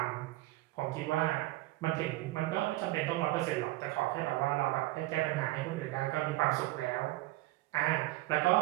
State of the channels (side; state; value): left; quieter; 18.4 dB